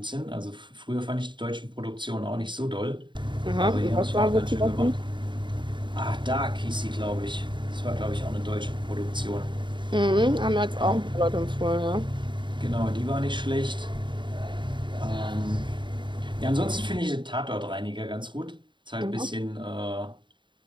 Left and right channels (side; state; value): left; late; 0.23 ms